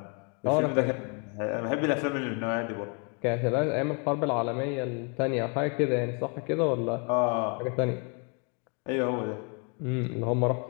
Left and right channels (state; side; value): quieter; right; 35.8 dB